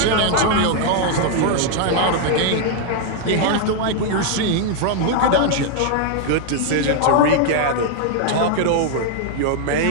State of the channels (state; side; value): different; both; correlation 0.00